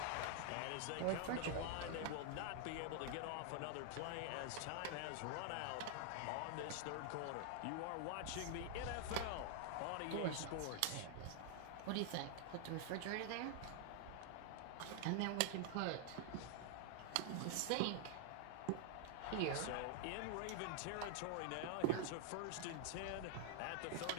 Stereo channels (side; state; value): both; different; correlation 0.00